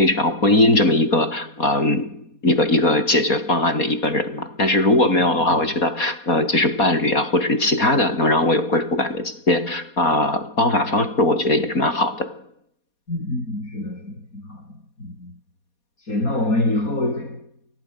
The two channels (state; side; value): late; right; 4.2 ms